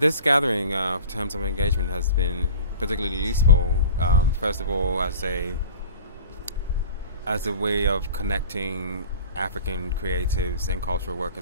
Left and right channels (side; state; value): both; inverted; correlation -0.40